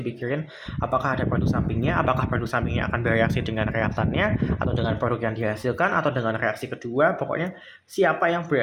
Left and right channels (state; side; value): identical; both; correlation 1.00